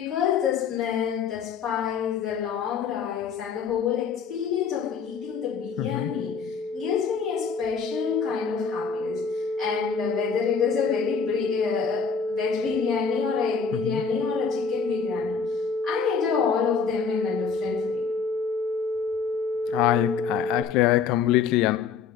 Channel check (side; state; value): right; quieter; 5.8 dB